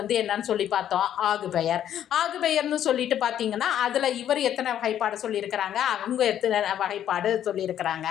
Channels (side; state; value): right; quieter; 10.6 dB